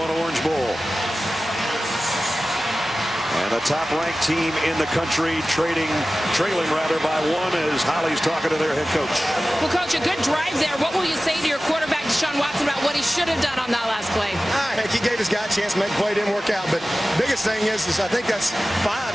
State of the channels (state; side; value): normal; both; correlation 0.96